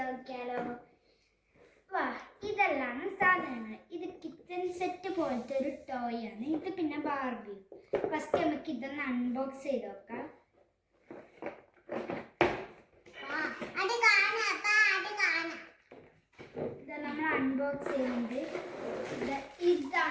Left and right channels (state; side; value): identical; both; correlation 1.00